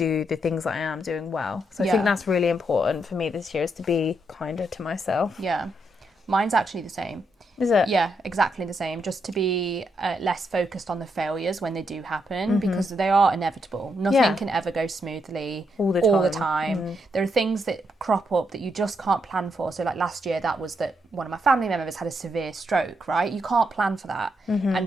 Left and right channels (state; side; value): normal; both; correlation 0.79